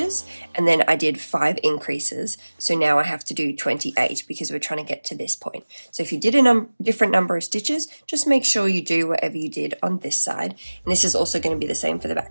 and then I did 5 increases. So now I have to do 28 because we're trying to get to this point. So if you did a different number of stitches, just make sure you do whatever you did on this side. And this is also going to be the same for the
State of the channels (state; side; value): inverted; both; correlation -1.00